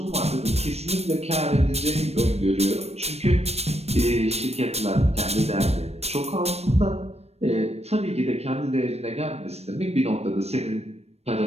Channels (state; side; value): late; left; 0.31 ms